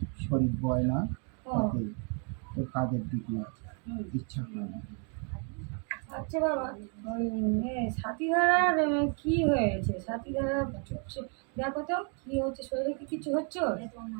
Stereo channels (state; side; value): quieter; left; 39.4 dB